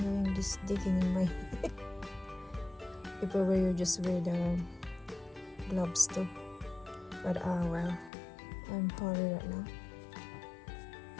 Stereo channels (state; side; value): drops out; right; at 8.1 s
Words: this digging in my if I were you, just wear the gloves too, but well, I'm hurry right now